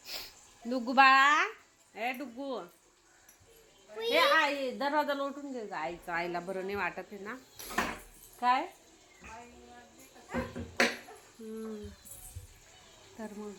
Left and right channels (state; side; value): identical; both; correlation 1.00